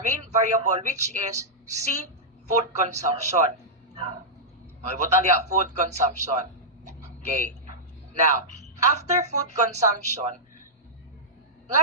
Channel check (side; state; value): both; normal; correlation -0.11